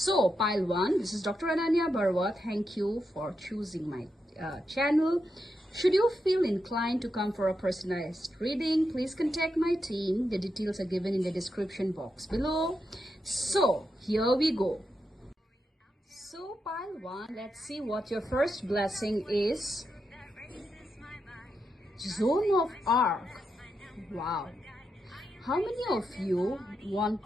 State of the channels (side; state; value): both; normal; correlation 0.85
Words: pile 1, this is Dr. Ananya Barwa. Thank you for choosing my channel. Should you feel inclined to come for a personalized reading, please contact my team. The details are given in the description box below. So here we go. So pile 1, let's see what your first blessing is. Zone of Arc. Wow. How many of you